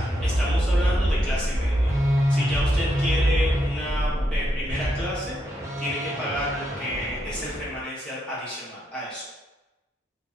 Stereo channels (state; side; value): normal; both; correlation 0.80